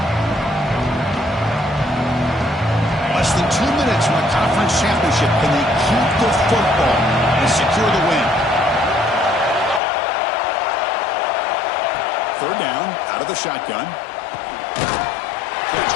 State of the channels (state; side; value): drops out; right; at 9.8 s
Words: Less than 2 minutes from a conference championship. Can they keep the football and secure the win? 3rd down, out of the shotgun. Catch